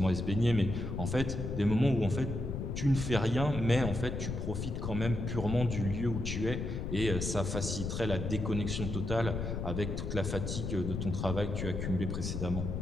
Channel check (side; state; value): left; noise; rumble, 3 dB below the sound